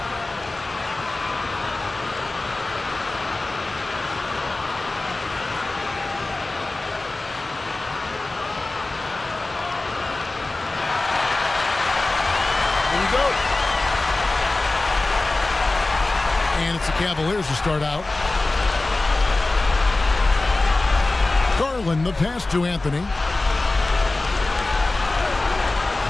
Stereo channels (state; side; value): quieter; right; 3.1 dB